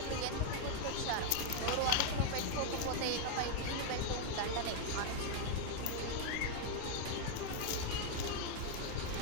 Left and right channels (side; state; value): both; different; correlation 0.00